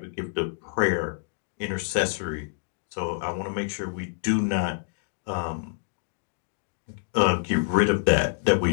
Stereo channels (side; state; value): right; silent; digital silence